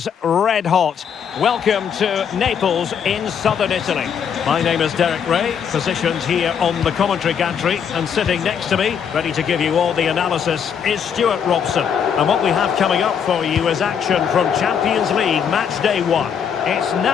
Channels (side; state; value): right; quieter; 7.6 dB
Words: red hot. Welcome to Naples in southern Italy. My name is Derek Ray, positioned here on the commentary gantry, and sitting next to me, ready to give you all the analysis, is Stuart Robson. And what we have coming up for you is action from Champions League match day 1. It's